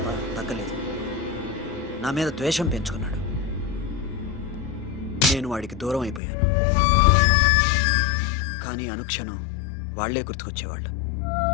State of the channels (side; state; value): right; drops out; at 6.2 s